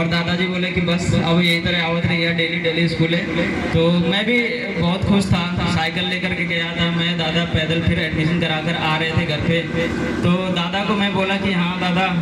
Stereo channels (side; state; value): both; identical; correlation 1.00